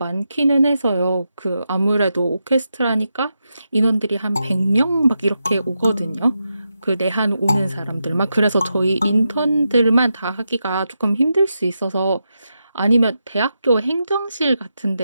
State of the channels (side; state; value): both; inverted; correlation -0.87